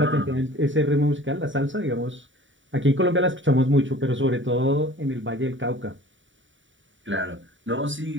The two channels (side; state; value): left; late; 0.55 ms